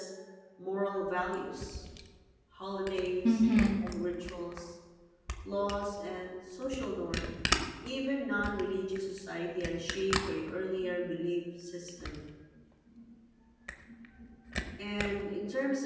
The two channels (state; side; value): identical; both; correlation 1.00